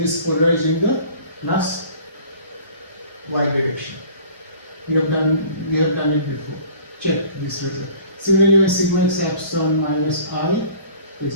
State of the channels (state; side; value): inverted; both; correlation -0.48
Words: is polarized in the plus y direction. We have done it before. Check this result. Similarly, when sigma x acts on minus I, which